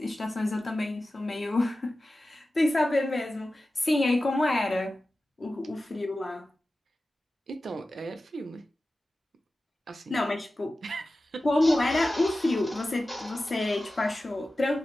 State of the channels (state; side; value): normal; both; correlation 0.95